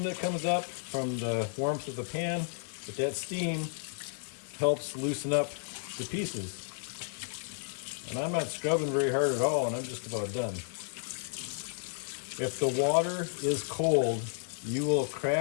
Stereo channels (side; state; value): right; silent; digital silence